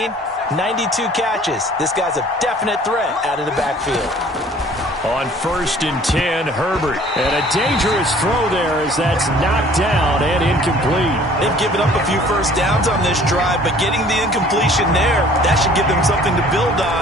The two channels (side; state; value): both; normal; correlation 0.53